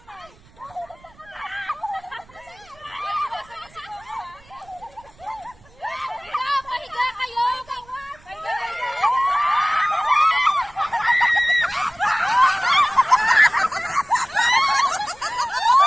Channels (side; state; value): right; noise; rumble, 27 dB below the sound